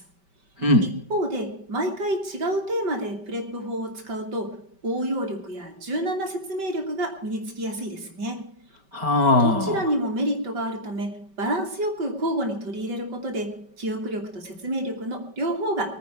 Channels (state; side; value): late; left; 5.2 ms